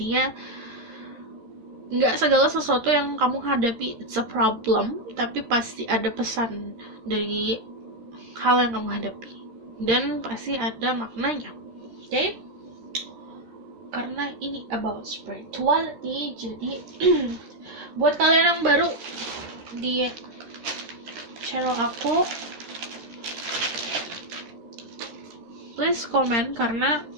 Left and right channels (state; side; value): late; left; 13 ms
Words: nggak segala sesuatu yang kamu hadapi it's a problem, tapi pasti ada pesan dari hal yang kamu hadapi dan pasti ada maknanya. Oke? Karena ini about spirituality, jadi buat kalian yang baru di channel aku, please komen, karena